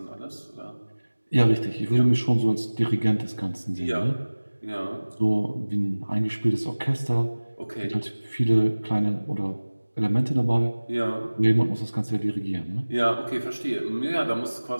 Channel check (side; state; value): both; inverted; correlation -1.00